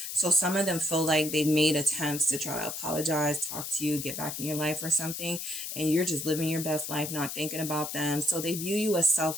So some of them feel like they've made attempts to try to apologize, talk to you, get back in your life or something, and you're just living your best life, not thinking about them. So they view you as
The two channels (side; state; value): left; noise; hiss, 6 dB below the sound